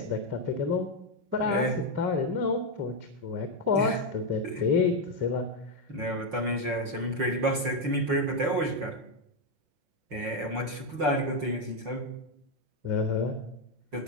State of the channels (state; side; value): late; left; 5.6 ms